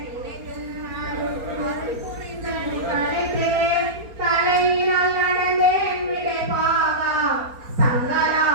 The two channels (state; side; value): late; left; 4.3 ms